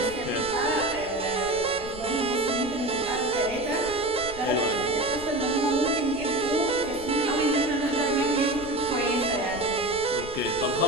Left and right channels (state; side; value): noise; right; rumble, 17 dB below the sound